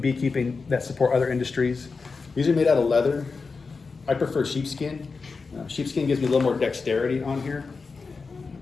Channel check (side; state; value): right; quieter; 4.5 dB